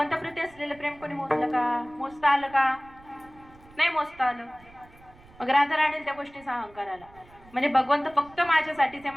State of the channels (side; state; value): right; noise; rumble, 25 dB below the sound